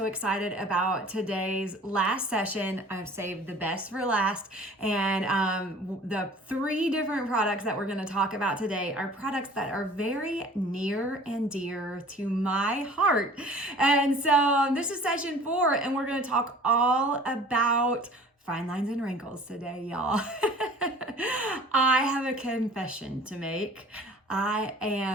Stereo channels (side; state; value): both; normal; correlation 0.47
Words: excited about today's last session. I've saved the best for last. And the 3 different products that we're going to talk about today are products that are very near and dear to my heart. And so this is session 4, and we're going to talk all about fine lines and wrinkles today, y'all. I have a confession to make. I